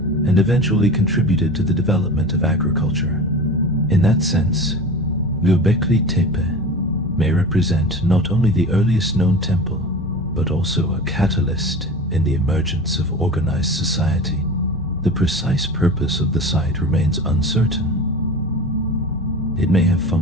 and eventually contributed to the development of agriculture. In that sense, Göbekli Tepe may represent not only the earliest known temple, but also a catalyst in the emergence of organized society. The precise purpose of the site remains uncertain. It may have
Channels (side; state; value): both; normal; correlation 0.34